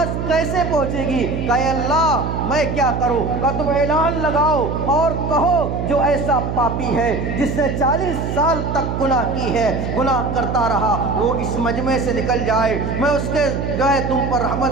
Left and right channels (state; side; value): noise; right; hum, 3 dB below the sound